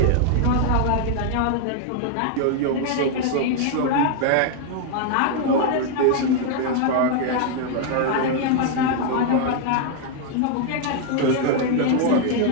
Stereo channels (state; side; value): different; both; correlation 0.00